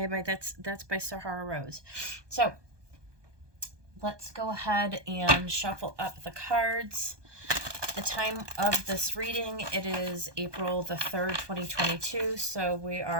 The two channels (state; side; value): late; left; 1.2 ms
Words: that's by Sahara Rose. So let's go ahead and shuffle up the cards. The time of this reading, it is April the 3rd, 2022. So we